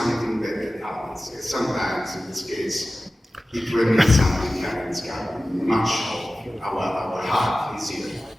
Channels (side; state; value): both; normal; correlation 0.95